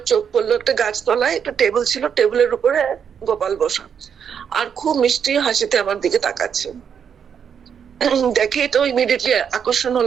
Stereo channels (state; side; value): quieter; left; 7.6 dB